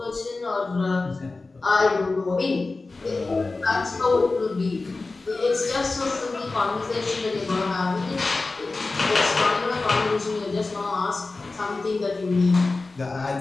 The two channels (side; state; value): right; quieter; 3.6 dB